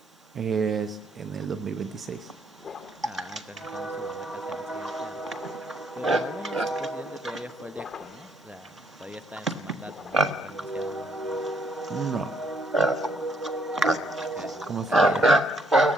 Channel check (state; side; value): normal; both; correlation 0.70